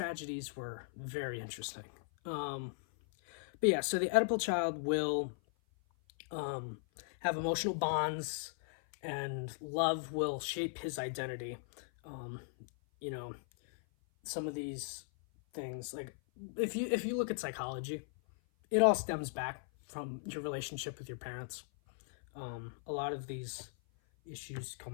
were very interesting. But yeah, so the Oedipal child will have emotional bonds, and love will shape his identity. You know, some of these things, like if you look at psychology, it all stems back from your relationship with your parents. A lot of these issues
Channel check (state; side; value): silent; right; 53 dB below the other